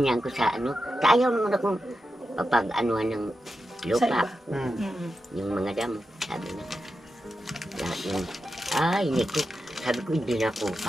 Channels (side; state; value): both; normal; correlation 0.89